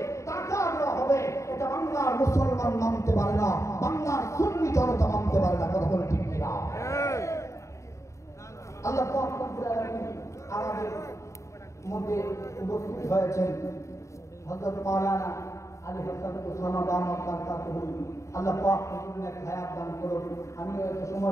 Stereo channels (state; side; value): late; right; 0.14 ms